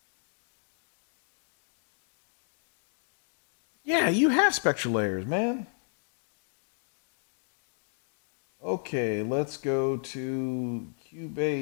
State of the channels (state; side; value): silent; right; digital silence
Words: Yeah, you have spectral layers, man. Okay, let's go to